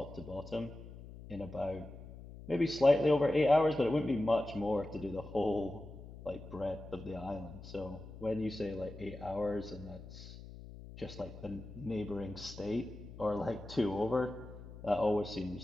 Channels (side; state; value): left; noise; hum, 14 dB below the sound